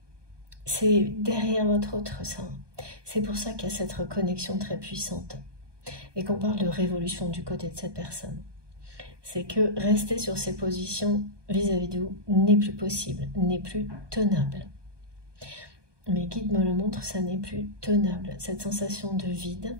c'est derrière votre autre sein. C'est pour ça qu'il y a cette reconnexion très puissante. Et qu'on parle de révolution du côté de cette personne. C'est que rester sur ses positions vis-à-vis de vous n'est plus possible, n'est plus tenable. Mes guides me le montrent, ça n'est plus tenable. Cette sensation de vide,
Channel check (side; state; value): left; late; 1.2 ms